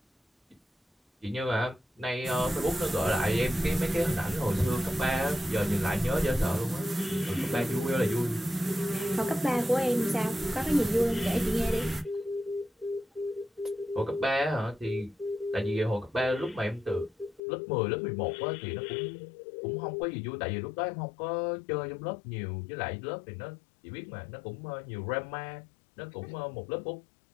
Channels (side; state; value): right; drops out; at 17.4 s